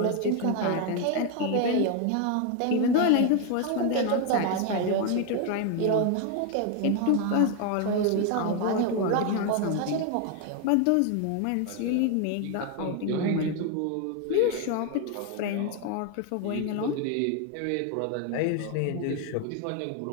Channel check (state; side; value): different; both; correlation 0.01